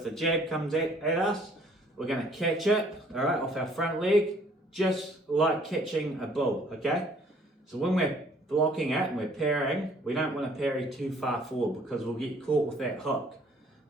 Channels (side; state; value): both; normal; correlation 0.59